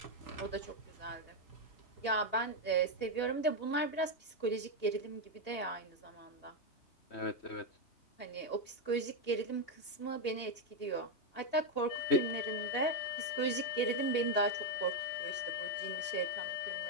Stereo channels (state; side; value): late; right; 2.8 ms